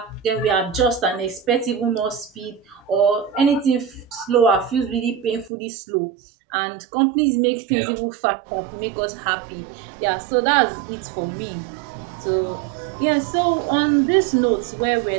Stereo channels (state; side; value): drops out; left; at 5.5 s